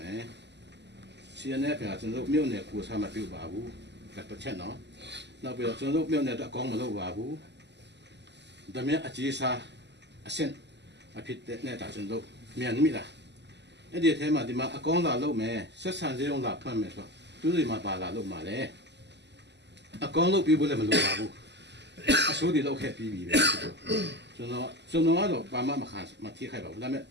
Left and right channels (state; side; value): late; left; 0.50 ms